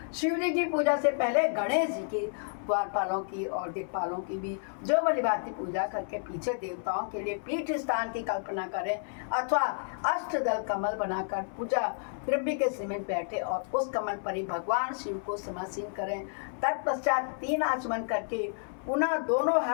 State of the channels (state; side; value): silent; right; 57 dB below the other